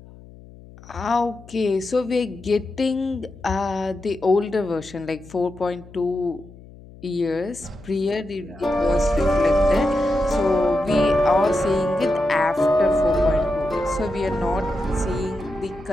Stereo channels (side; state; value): left; noise; hum, 20 dB below the sound